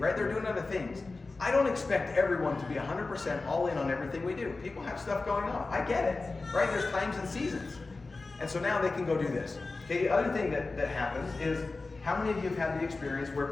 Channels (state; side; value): quieter; right; 3.6 dB